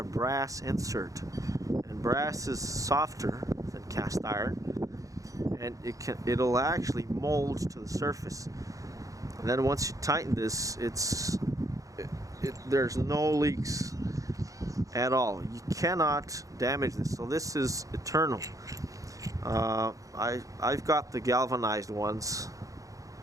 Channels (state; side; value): late; left; 0.16 ms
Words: brass insert, and brass is softer than cast iron, and it'll actually mold to the surface. And then once you tighten this, there's no leaks at all. You cannot damage this. So this is eternal. I've got the galvanized ones,